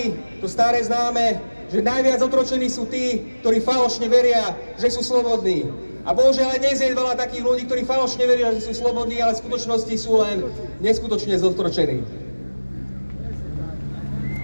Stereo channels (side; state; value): both; inverted; correlation -1.00